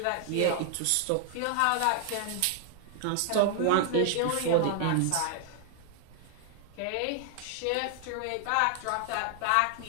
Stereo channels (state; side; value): different; both; correlation 0.00